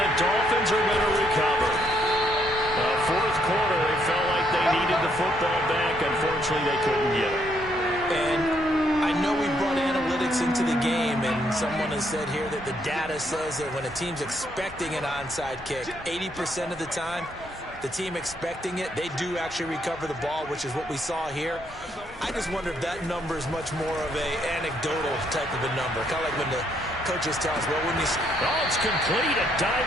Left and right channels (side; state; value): both; normal; correlation 0.72